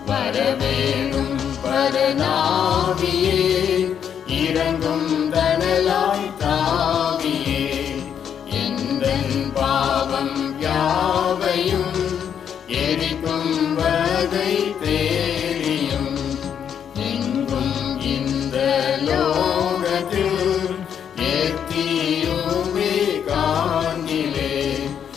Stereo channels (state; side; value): quieter; right; 8.3 dB